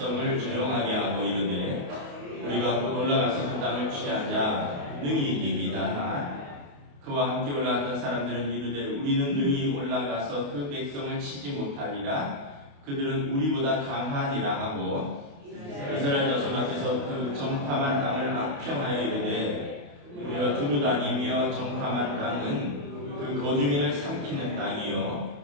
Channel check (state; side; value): late; left; 28 ms